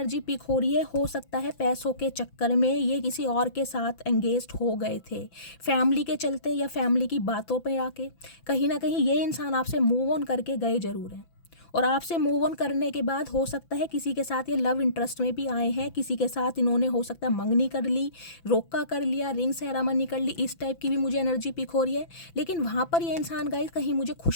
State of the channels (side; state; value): right; late; 5.9 ms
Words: पिक हो रही है, हो सकता है पैसों के चक्कर में ये किसी और के साथ एंगेज्ड हो गए थे, फैमिली के चलते या फैमिली की बातों पे आके कहीं ना कहीं ये इंसान आपसे मूव ऑन करके गए जरूर हैं, और आपसे मूव ऑन करने के बाद हो सकता है किसी के साथ ये लव इंटरेस्ट में भी आए हैं, किसी के साथ इन्होंने हो सकता है मंगनी कर ली, रोका कर लिया, रिंग सेरेमनी कर ली, इस टाइप की भी मुझे एनर्जी पिक हो रही है। लेकिन वहाँ पर ये इंसान गाइस कहीं मुझे